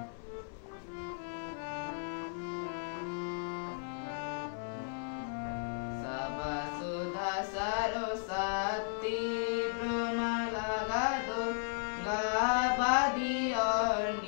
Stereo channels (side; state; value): right; silent; 54 dB below the other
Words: सबसुधा सरस्वती ब्रह्मलगादो गाबादी